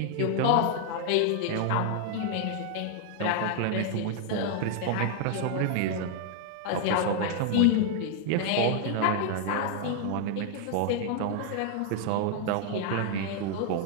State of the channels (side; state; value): both; different; correlation 0.00